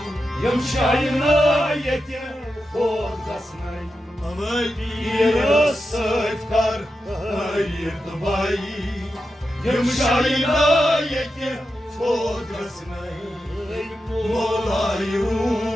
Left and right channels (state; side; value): normal; both; correlation 0.89